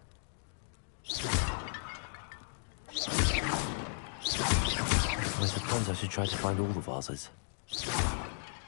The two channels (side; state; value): right; silent; digital silence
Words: I suppose I should try to find all the vases.